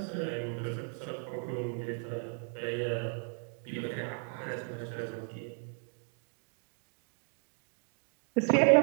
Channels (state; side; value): quieter; left; 38.7 dB